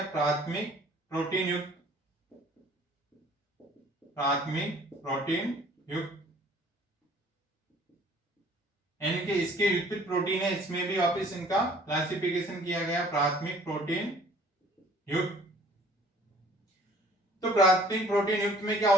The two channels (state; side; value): normal; both; correlation 0.53